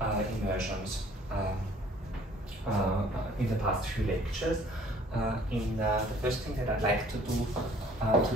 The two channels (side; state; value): both; normal; correlation 0.56